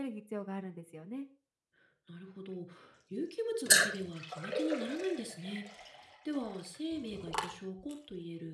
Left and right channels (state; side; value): identical; both; correlation 1.00